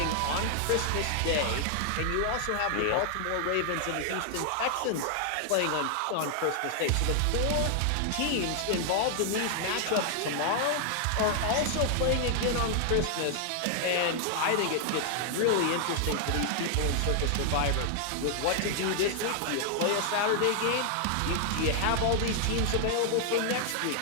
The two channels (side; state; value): both; different; correlation 0.00